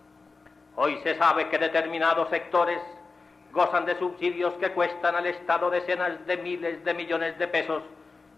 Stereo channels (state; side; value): quieter; right; 4.1 dB